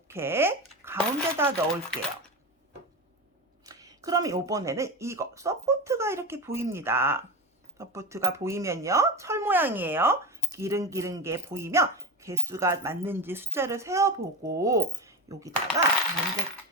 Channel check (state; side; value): normal; both; correlation 0.20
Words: 가운데다 넣을게요. 그러면 이번에는 이거 서포트가 이렇게 보입니다. 서포트가 보이면요, 철 모양이에요. 기른기른 게 보이면 개수가 맞는지 숫자를 세어보고 여기다가